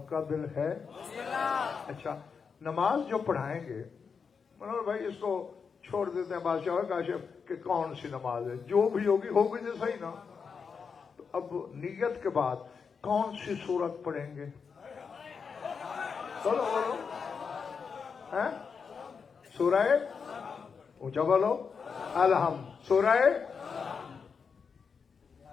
کا دل ہے. اچھا نماز جو پڑھائیں گے منور بھائی اس کو چھوڑ دیتے ہیں بادشاہ کاشف کہ کون سی نماز ہے, جو بھی ہوگی ہوگی تو صحیح نا. تو اب نیت کے بعد کون سی سورت پڑھیں گے؟ بولو بولو. ہیں سورہ اونچا بولو. الحمد. سورہ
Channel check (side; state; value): right; quieter; 5.8 dB